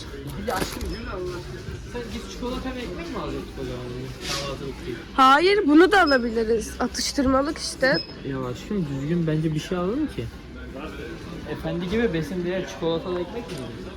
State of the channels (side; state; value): both; identical; correlation 1.00